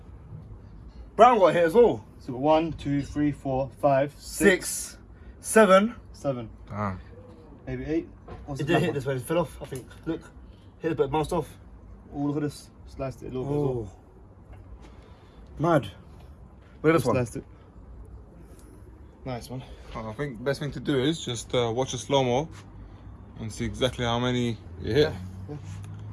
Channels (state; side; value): identical; both; correlation 1.00